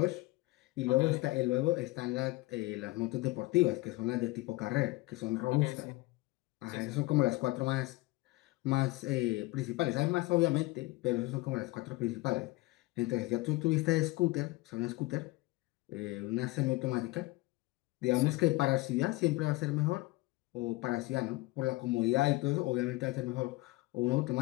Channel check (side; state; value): right; quieter; 20.9 dB